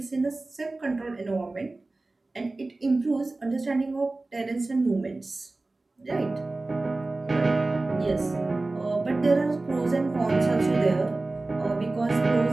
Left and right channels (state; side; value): quieter; left; 3.1 dB